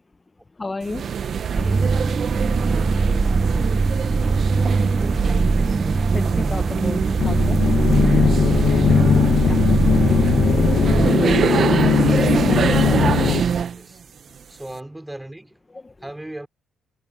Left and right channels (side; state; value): both; normal; correlation 0.78